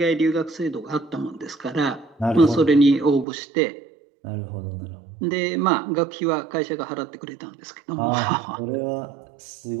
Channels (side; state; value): left; drops out; at 3.2 s